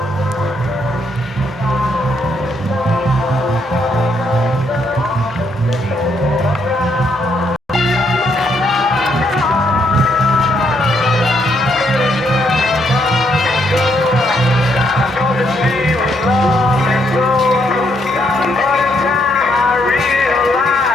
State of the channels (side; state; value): both; normal; correlation 0.74